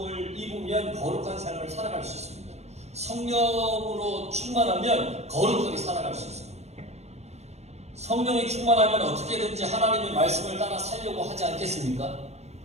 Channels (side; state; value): left; late; 0.31 ms